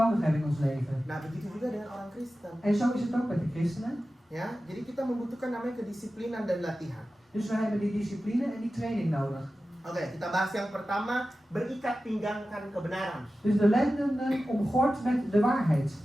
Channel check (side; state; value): both; normal; correlation 0.94